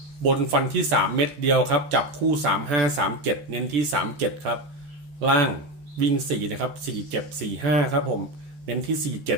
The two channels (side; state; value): left; late; 14 ms